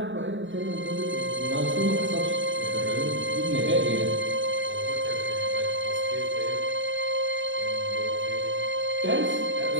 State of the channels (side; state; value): left; late; 0.55 ms